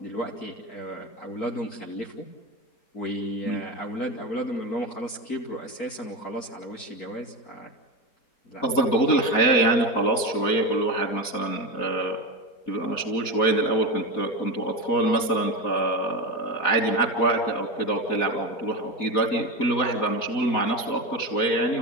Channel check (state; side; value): late; right; 4.2 ms